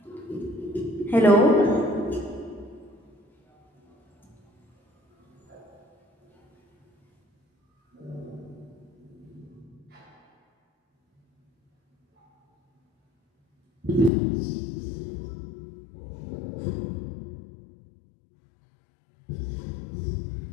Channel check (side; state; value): right; drops out; at 14.1 s